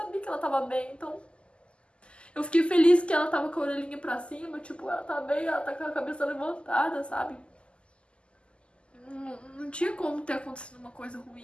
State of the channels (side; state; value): right; late; 0.052 ms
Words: que ela tava bem, então... Eu fiquei feliz que ela tava com a orelhinha pra cima, tipo, ela tá bem, ela tá com a cabeça levantada, sabe? Não tinha como ter acontecido uma coisa